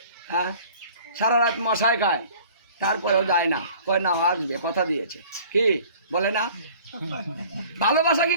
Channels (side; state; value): both; inverted; correlation -0.49